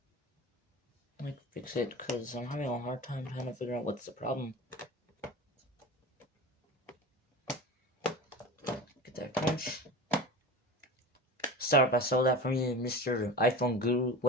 fix it because I'm having a hard time trying to figure out what's the problem. Get that crunch. Sorry if I stole that from you, Mr. iPhone Guru,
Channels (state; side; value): normal; both; correlation 0.32